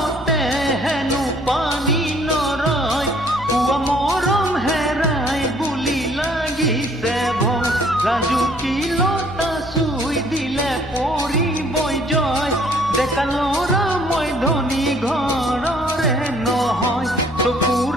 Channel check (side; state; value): left; noise; hum, 17 dB below the sound